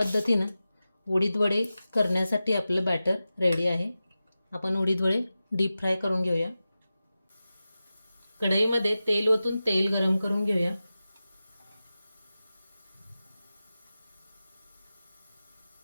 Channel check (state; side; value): inverted; both; correlation -0.94